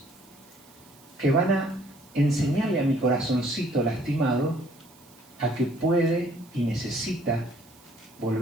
que van a enseñarle a mi corazoncito lastimado a que puede y necesita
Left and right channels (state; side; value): noise; right; hiss, 26 dB below the sound